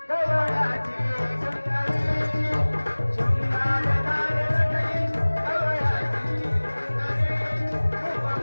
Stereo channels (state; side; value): inverted; both; correlation -1.00